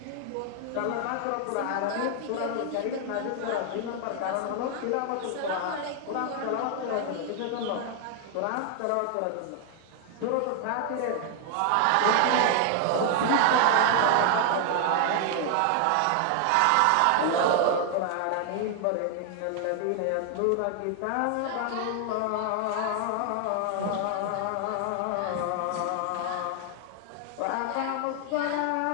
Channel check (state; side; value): different; both; correlation 0.00